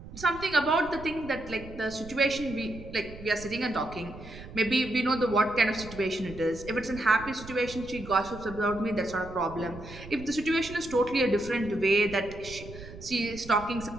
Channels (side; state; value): right; noise; rumble, 15 dB below the sound